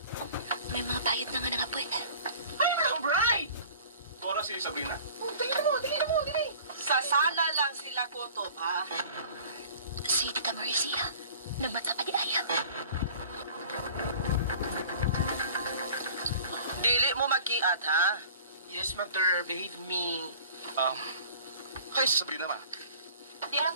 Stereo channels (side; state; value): both; inverted; correlation -0.46